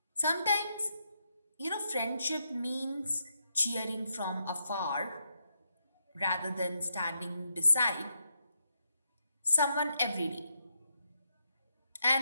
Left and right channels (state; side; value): inverted; both; correlation -0.82